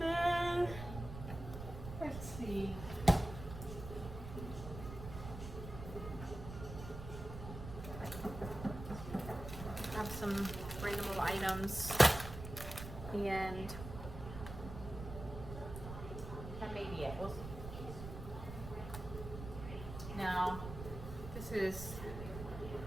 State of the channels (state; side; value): noise; right; rumble, 9 dB below the sound